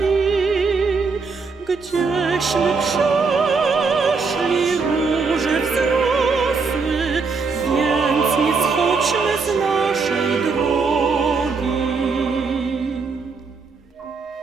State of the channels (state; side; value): quieter; left; 4.6 dB